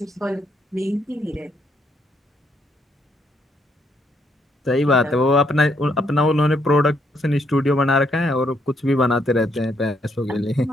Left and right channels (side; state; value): both; normal; correlation 0.73